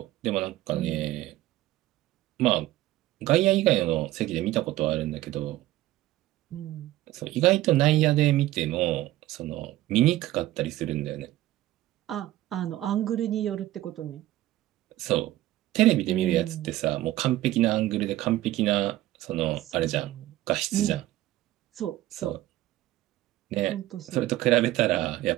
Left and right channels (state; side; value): quieter; left; 15.5 dB